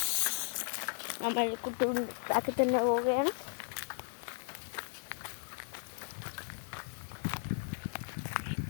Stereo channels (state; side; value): silent; right; 54 dB below the other